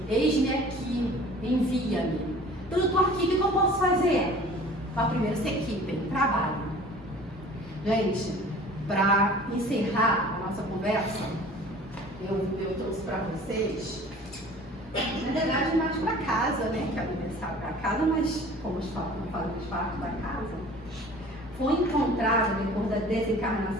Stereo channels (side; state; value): both; normal; correlation 0.46